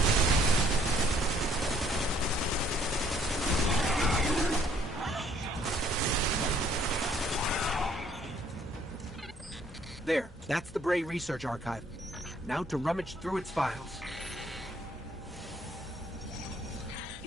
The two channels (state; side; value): normal; both; correlation 0.63